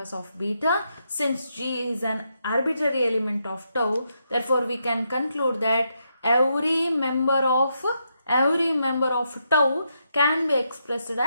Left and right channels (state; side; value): inverted; both; correlation -0.81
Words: of beta. Since G is an arbitrary element of tau, therefore we can conclude that every member of tau can be expressed